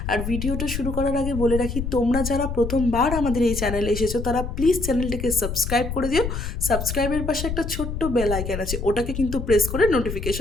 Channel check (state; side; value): noise; left; rumble, 5 dB below the sound